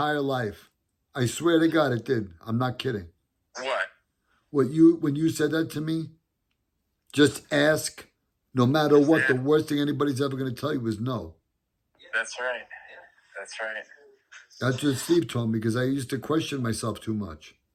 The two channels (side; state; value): both; identical; correlation 1.00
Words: life. I swear to God it did. I'm not kidding. What? When you said that to me, just ask, no matter what, the worst thing anybody's ever going to tell you is no. That's right. That's right. That's what Steve told me because I used to question myself too much.